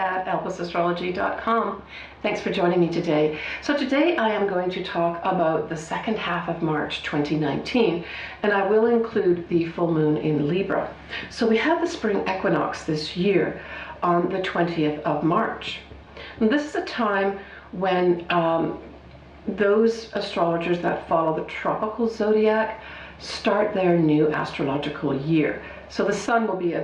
elpisastrology.com. Thanks for joining me today. So today I am going to talk about the second half of March 2019, and I will include the full moon in Libra. So we have the Spring Equinox this year on the 20th of March. And this is a time when those astrologers that follow the tropical zodiac start their new astrological year. So the sun will be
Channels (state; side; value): identical; both; correlation 1.00